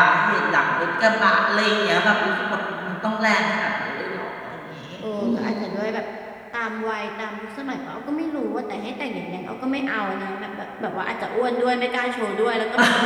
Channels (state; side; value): identical; both; correlation 1.00